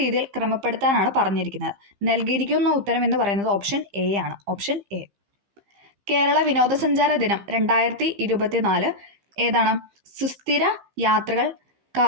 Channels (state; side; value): late; left; 15 ms